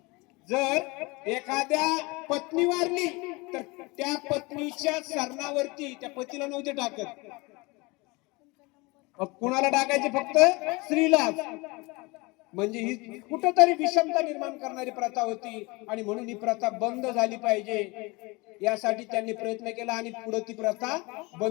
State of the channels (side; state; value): right; quieter; 25.3 dB